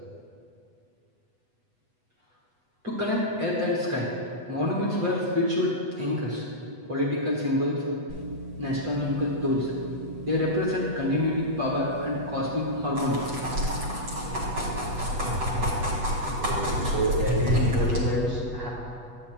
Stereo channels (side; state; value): left; late; 8.1 ms